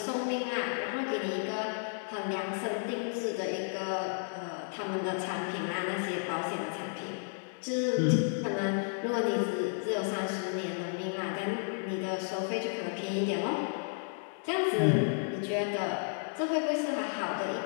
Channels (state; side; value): silent; right; digital silence